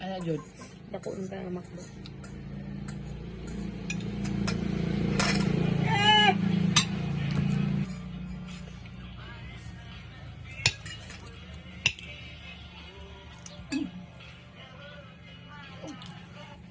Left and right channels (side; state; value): both; identical; correlation 1.00